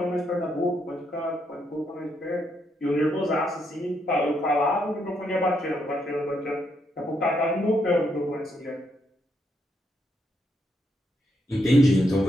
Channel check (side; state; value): both; normal; correlation 0.77